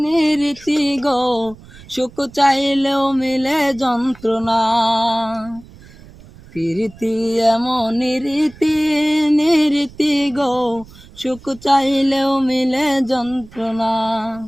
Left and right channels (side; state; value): right; noise; rumble, 21 dB below the sound